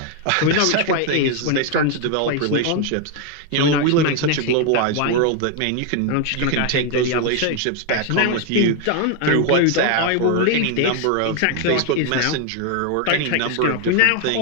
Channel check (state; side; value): different; both; correlation 0.01